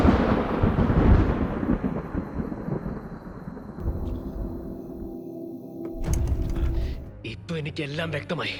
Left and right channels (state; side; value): identical; both; correlation 1.00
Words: ഇപ്പൊ എനിക്കെല്ലാം വ്യക്തമായി.